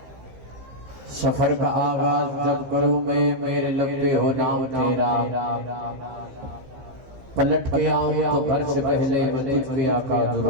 سفر کا آغاز جب کروں میں میرے لب پہ ہو نام تیرا پلٹ کے آؤں تو گھر سے پہلے میں تجھ پہ آقا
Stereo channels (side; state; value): left; late; 15 ms